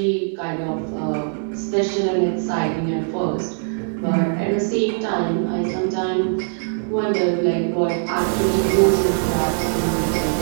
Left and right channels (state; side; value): silent; left; digital silence